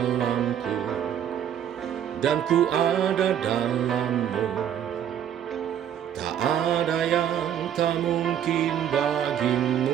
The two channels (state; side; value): quieter; left; 9.7 dB